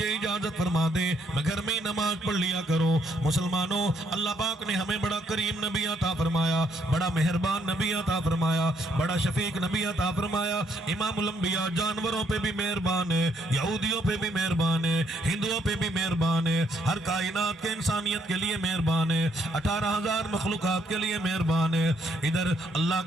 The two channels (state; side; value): normal; both; correlation 0.71